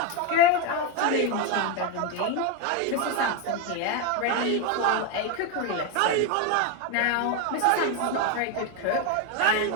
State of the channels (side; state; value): both; different; correlation 0.02